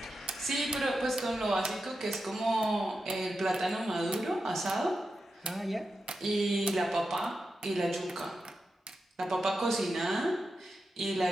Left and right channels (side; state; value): both; normal; correlation 0.89